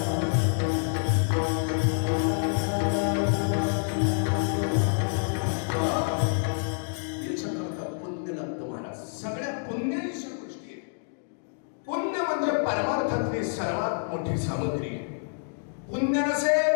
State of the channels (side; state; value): right; silent; digital silence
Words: सर्वात मोठी सामग्री आहे. पुण्य